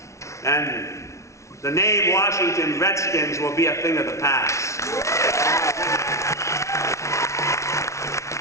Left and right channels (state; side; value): late; right; 0.14 ms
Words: And the name Washington Redskins will be a thing of the past. We